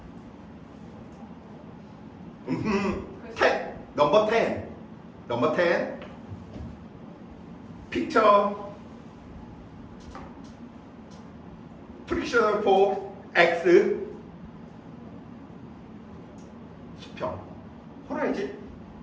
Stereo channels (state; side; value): identical; both; correlation 1.00